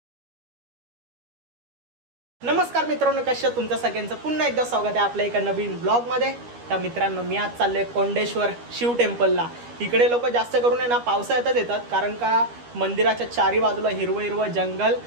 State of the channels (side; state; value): left; late; 13 ms